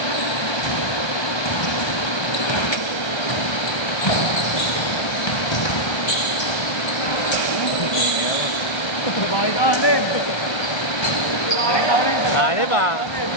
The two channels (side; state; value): right; late; 1.3 ms